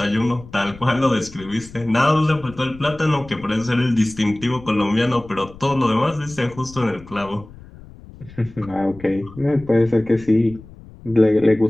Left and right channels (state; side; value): noise; left; rumble, 19 dB below the sound